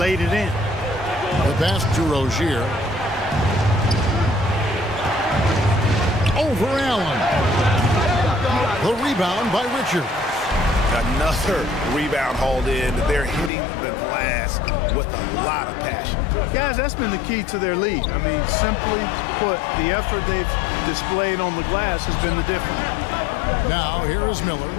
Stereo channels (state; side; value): drops out; right; at 13.5 s